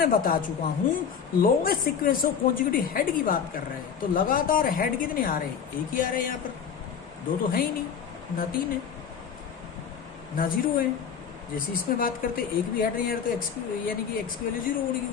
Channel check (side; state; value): right; quieter; 7.2 dB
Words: बता चुका हूं, longest sequence of conjugative head की बात कर रहे हैं, तो लगातार हेड कितने आ रहे हैं, एक ही आ रहे हैं, यहाँ पर 2 तो है ही नहीं, ना 3 है ना 0 है। जैसे इसमें बात करते एक भी हेड नहीं आ रहा तो एक्स यानी कि एक्स की वैल्यू 0 होगी